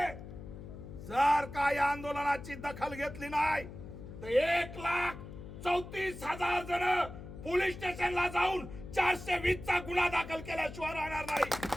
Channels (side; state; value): left; noise; hum, 12 dB below the sound